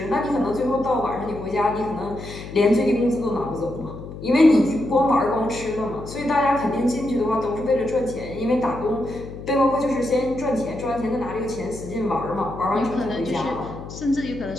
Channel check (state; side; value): noise; left; hum, 11 dB below the sound